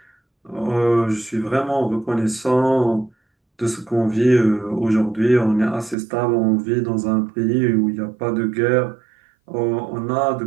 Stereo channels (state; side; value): drops out; left; at 6.0 s